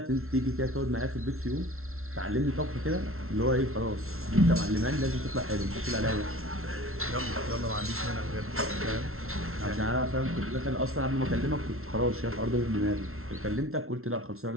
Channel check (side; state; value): left; late; 0.62 ms